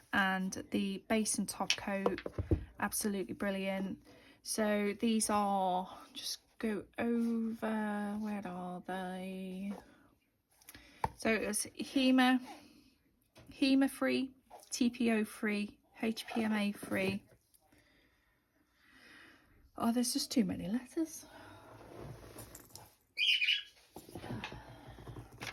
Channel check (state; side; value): identical; both; correlation 1.00